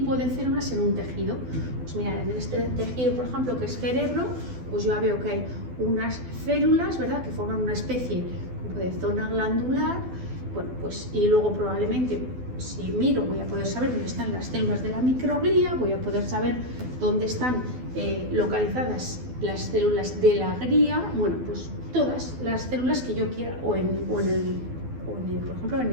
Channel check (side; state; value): left; late; 12 ms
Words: de células en un tejido. Pues mira, en este tejido, por ejemplo, que es cerebro, pues yo ya veo que hay unas células, ¿verdad?, que forman una especie de zona glandular. Bueno, pues y luego probablemente, si miro, voy a poder saber dónde están las células de la microglía, voy a poder saber dónde están localizadas las células de la glía. Bueno, pues todas las células que yo quiera, o por ejemplo, en